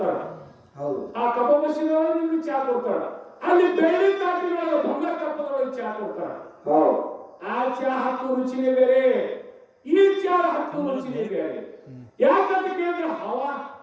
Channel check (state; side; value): identical; both; correlation 1.00